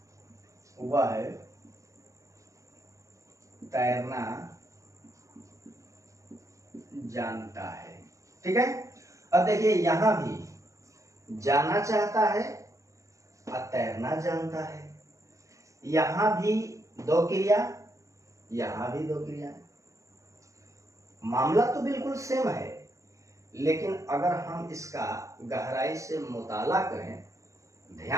वह है तैरना जानता है। ठीक है, अब देखिए यहां भी जाना चाहता है और तैरना जानता है, यहां भी दो क्रिया, यहां भी दो क्रिया। मामला तो बिल्कुल सेम है, लेकिन अगर हम इसका गहराई से मुताला करें,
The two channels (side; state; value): left; late; 0.15 ms